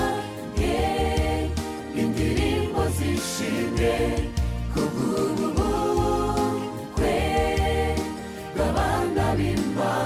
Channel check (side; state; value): both; identical; correlation 1.00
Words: indirimbo zishimwe, kubw'ubukwe bw'abana